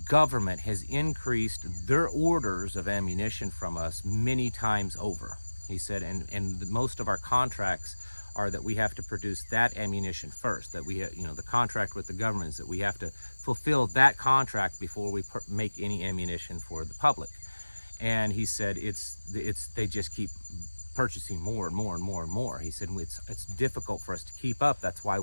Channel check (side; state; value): both; inverted; correlation -1.00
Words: government has increased their orders of ammunition from us many times over. He said, and most of our contracts are that we have to produce that ammunition first, that we have, the contract with the government is that we have to fulfill that contract before we make any ammunition for the public. And he said, they just keep purchasing more and more and more and more. He said, it's difficult for us to keep up. That's why